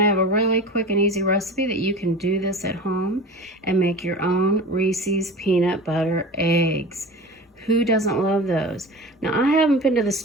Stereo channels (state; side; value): normal; both; correlation 0.34